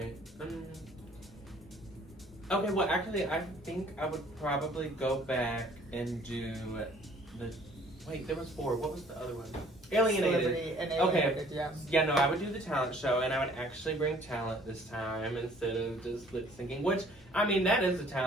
Okay, well, actually, I think I would probably go back and do the... Wait, there was 4. What was the other one? Alienated. Okay. Yeah, no, I would do the talent show, and I would actually bring talent this time instead of just lip syncing, which, that is a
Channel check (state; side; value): normal; both; correlation 0.56